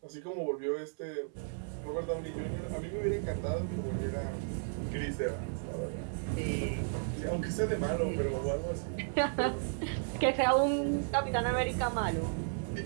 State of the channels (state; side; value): silent; left; 55 dB below the other